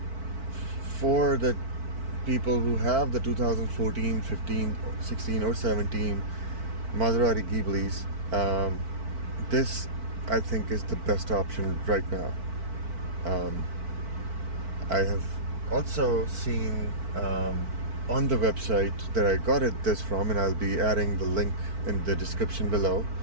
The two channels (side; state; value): left; late; 4.5 ms